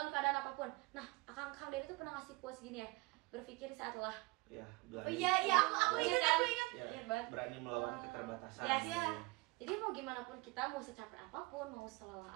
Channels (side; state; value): left; quieter; 25.2 dB